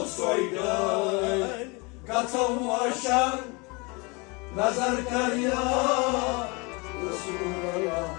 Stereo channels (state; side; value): quieter; right; 28.5 dB